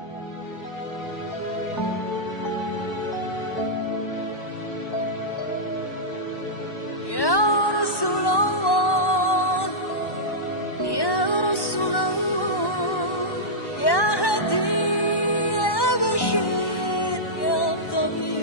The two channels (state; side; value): late; right; 1.1 ms